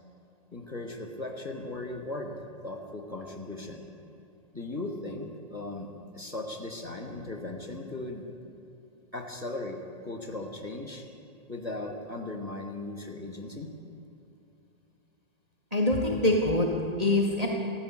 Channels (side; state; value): left; late; 1.8 ms